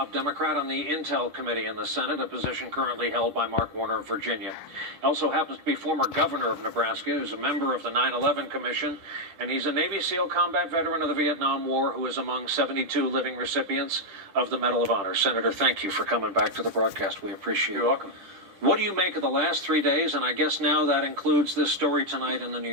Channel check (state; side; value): late; left; 10 ms